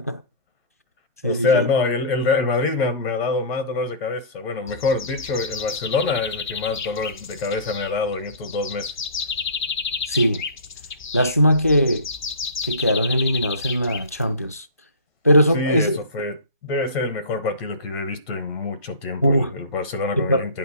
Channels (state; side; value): inverted; both; correlation -0.37